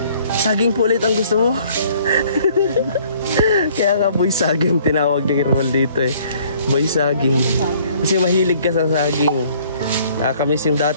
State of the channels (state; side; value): inverted; both; correlation -0.58